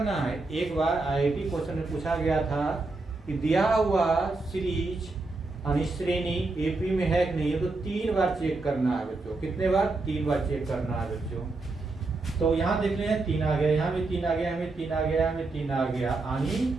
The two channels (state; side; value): quieter; left; 3.4 dB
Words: है। एक बार आईआईटी क्वेश्चन में पूछा गया था कि दिया हुआ सीरीज यानी श्रेणी एपी में है कि नहीं है, तो 3 बार चेक करना है बच्चों। कितने बार 3 बार चेक करना है बच्चों। तो यहाँ देख लें 3 आ गया, यहाँ भी 3 आ गया, हमें 3 आ गया, हमें 3 आ गया,